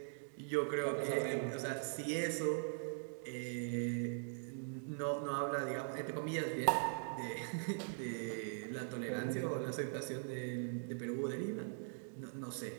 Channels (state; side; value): silent; left; digital silence